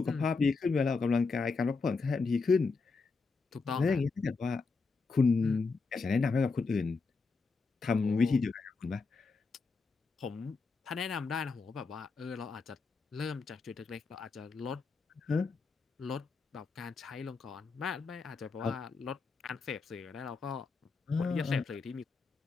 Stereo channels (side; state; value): right; quieter; 4.4 dB